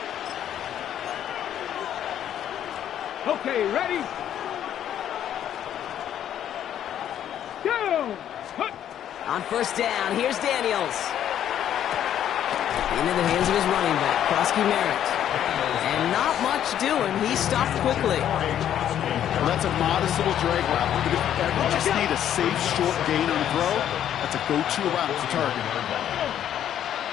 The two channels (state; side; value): quieter; right; 10.4 dB